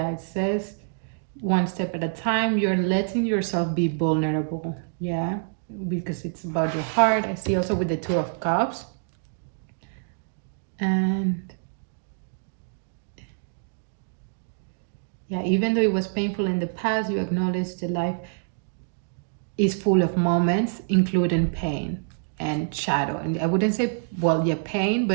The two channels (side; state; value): left; silent; digital silence